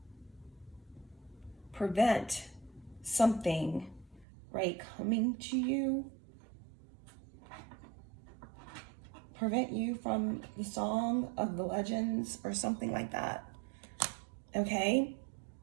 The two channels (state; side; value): drops out; left; at 4.2 s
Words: prevent something, right, coming to you, prevent you from the song of the legends or something like that, okay?